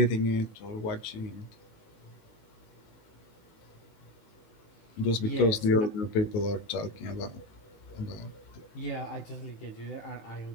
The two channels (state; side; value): late; right; 19 ms